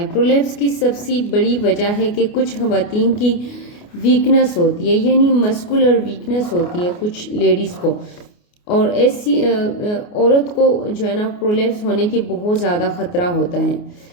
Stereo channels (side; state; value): right; late; 29 ms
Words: प्रोलैप्स की सबसे बड़ी वजह है कि कुछ खवातीन की वीकनेस होती है, यानी मस्कुलर वीकनेस होती है कुछ लेडीज़ को, और ऐसी औरत को जो है ना प्रोलैप्स होने की बहुत ज़्यादा ख़तरा होता है।